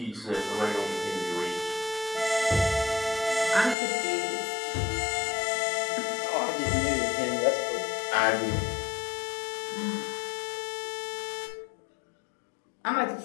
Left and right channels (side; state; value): right; drops out; at 3.8 s